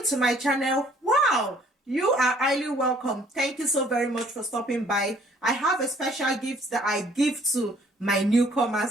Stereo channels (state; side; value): normal; both; correlation 0.60